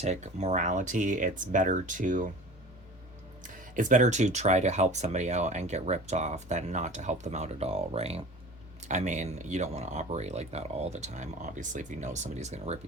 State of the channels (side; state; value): both; normal; correlation 0.39